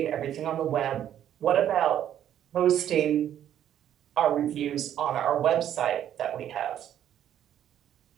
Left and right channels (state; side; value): quieter; left; 10.6 dB